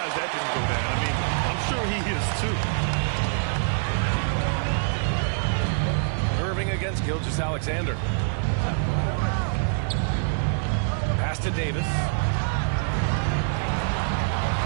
that didn't go down. I mean, I'm sure he is too. Irving against Gilgeous-Alexander. Pass to Davis.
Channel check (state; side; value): silent; left; digital silence